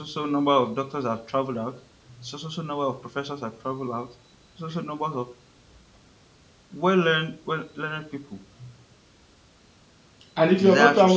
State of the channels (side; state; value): both; identical; correlation 1.00